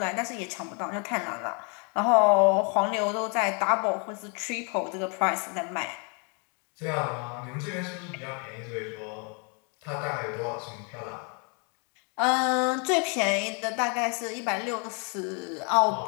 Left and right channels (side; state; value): right; quieter; 36.4 dB